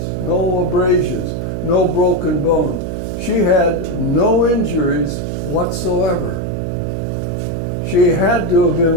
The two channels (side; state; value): right; noise; hum, 4 dB below the sound